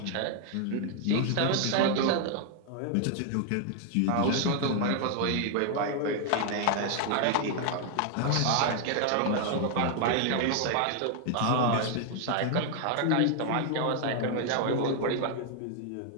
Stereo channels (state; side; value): different; both; correlation 0.00